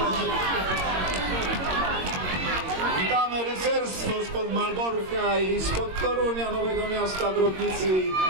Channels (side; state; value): left; late; 22 ms